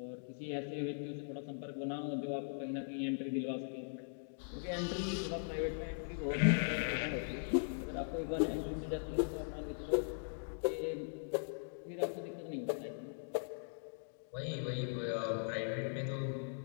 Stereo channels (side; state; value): right; silent; digital silence